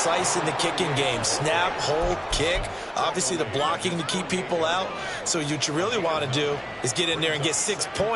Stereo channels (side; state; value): both; identical; correlation 1.00